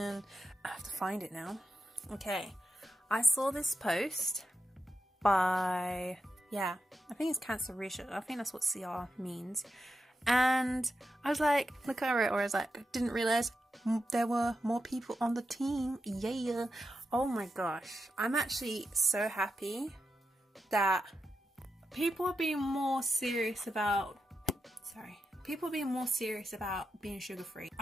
I have to find it now. Okay. I saw this post by, I think it's Cancer Research. I think that's what CR means. And I was like, look at it, or I was like, didn't realize there were more people on the team. Yeah. Oh my gosh. I'm actually so happy that people are being more serious about, being sugar-free.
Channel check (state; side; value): normal; both; correlation 0.87